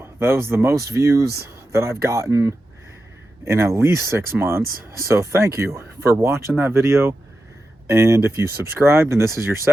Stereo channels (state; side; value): normal; both; correlation 0.90